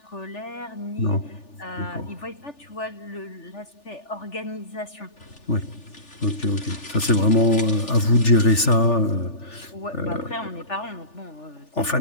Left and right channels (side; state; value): right; late; 3.4 ms